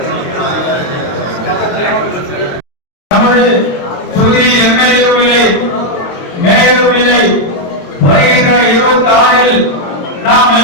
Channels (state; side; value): late; right; 22 ms